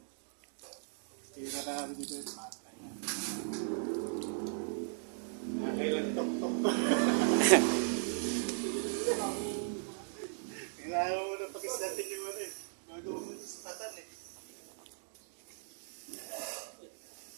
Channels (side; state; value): left; silent; digital silence